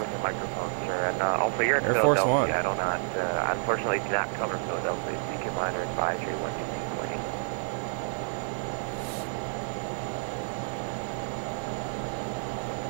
your microphone, sir. And also, you're in Air Force Philadelphia. One. I do not, unfortunately, do not cover Philadelphia. Seek your minor advisory 122.8.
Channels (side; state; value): left; silent; digital silence